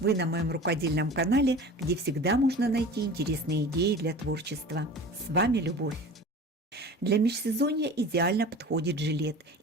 на моем рукодельном канале, где всегда можно найти интересные идеи для творчества. С вами Любовь. Для межсезонья идеально подходит жилет,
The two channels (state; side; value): normal; both; correlation 0.38